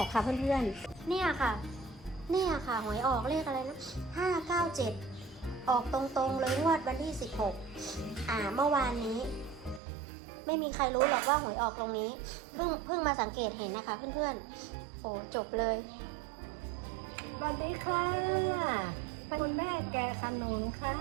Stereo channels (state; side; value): drops out; left; at 9.8 s